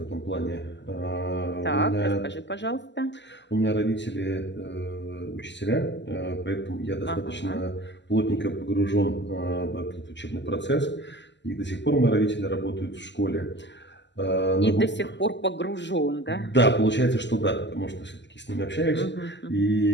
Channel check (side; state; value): right; late; 0.52 ms